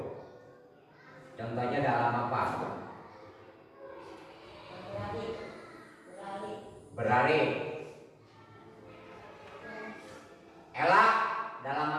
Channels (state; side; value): identical; both; correlation 1.00